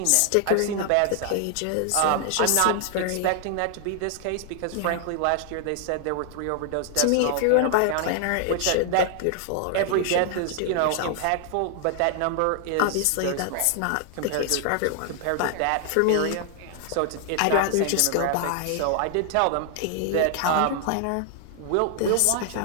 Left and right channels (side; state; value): both; different; correlation 0.00